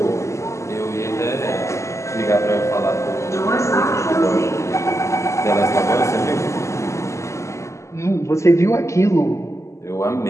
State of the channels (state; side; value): late; right; 0.14 ms